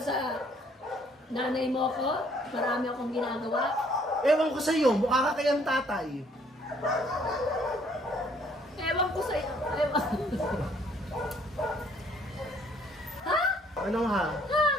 nanay mo ko, marami akong ginagawa. Ewan ko sa'yo, mukha ka kayang tatay. Ewan ko sa'yo. Ha? Ano ha? Ha?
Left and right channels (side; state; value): both; normal; correlation 0.63